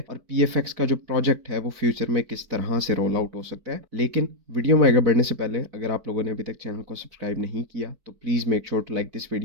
और पीएफएक्स का जो प्रोजेक्ट है वो फ्यूचर में किस तरह से रोल आउट हो सकता है। लेकिन वीडियो में आगे बढ़ने से पहले अगर आप लोगों ने अभी तक चैनल को सब्सक्राइब नहीं किया तो please make sure to like this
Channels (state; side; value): late; left; 4.5 ms